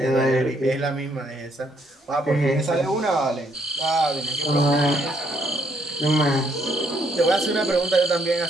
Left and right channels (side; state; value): both; normal; correlation 0.71